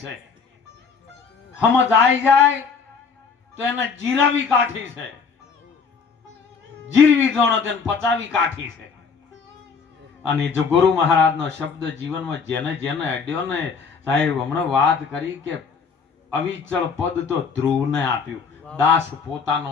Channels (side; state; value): right; quieter; 5.6 dB